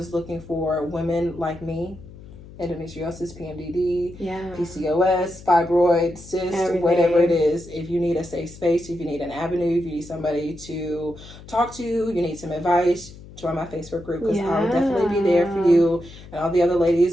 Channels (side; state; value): left; noise; hum, 18 dB below the sound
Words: looking for women like me. Endometriosis, PMDD, PCOS, fibroids, cysts, whatever it is. If you need a safe space, if you need an avenue, if you need somebody to talk to, you need some advice, join my Facebook group, because I'll definitely be there for you. And all the other